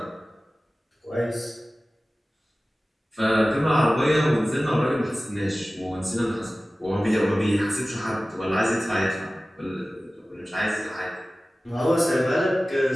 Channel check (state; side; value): normal; both; correlation 0.97